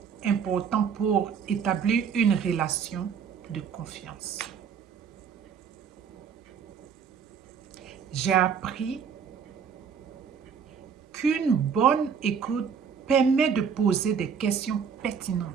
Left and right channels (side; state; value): left; quieter; 6.9 dB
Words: important pour établir une relation de confiance. J'ai appris qu'une bonne écoute permet de poser des questions